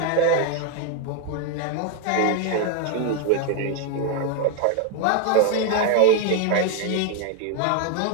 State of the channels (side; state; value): both; different; correlation 0.00